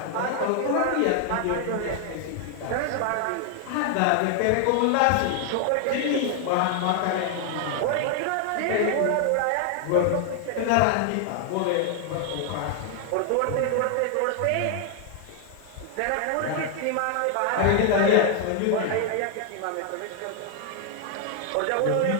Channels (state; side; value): different; both; correlation 0.00